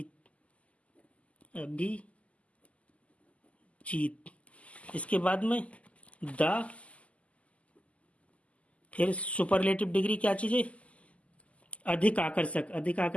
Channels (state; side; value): late; right; 0.065 ms